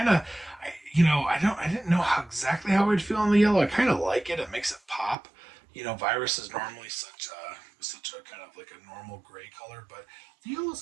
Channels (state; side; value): drops out; left; at 5.2 s